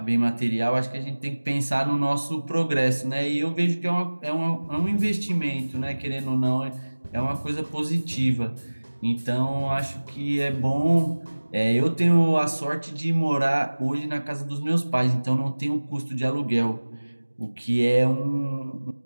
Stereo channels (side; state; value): both; inverted; correlation -1.00